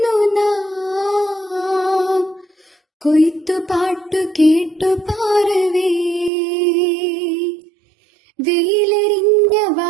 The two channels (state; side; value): drops out; left; at 6.3 s